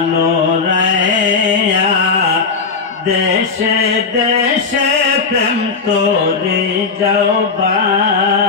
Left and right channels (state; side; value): quieter; right; 4.9 dB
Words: রায়া দেশে দেশে প্রেম তোরে যাও